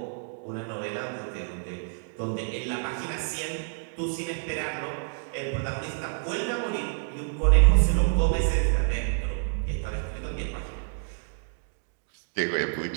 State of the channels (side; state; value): left; silent; digital silence